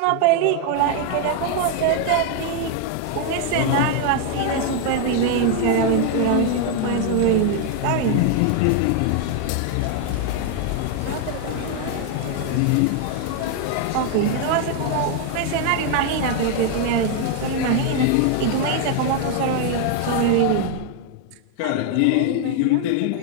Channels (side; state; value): both; different; correlation 0.00